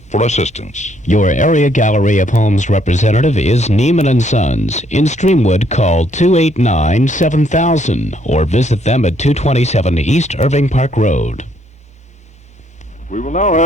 for assistance. Your area Gallery of Homes representative is Neiman & Sons. In Streamwood, call 289-7000 or visit them at 227 East Irving Park Road. We will now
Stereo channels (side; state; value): both; normal; correlation 0.69